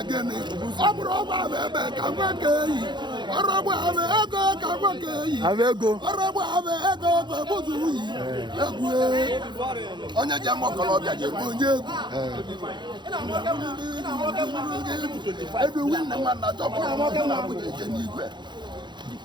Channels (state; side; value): late; left; 0.22 ms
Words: onye ji ama ọkọlọbịa ga-egbu onye egwu ebe nwanne nwanna chọpụrụ na abụja eje n'igwe